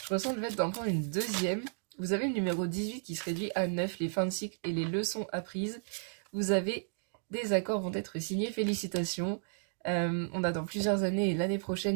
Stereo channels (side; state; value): left; silent; digital silence